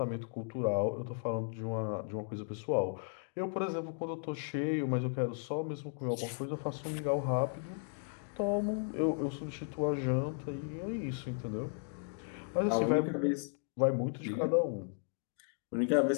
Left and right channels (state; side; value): silent; right; 54 dB below the other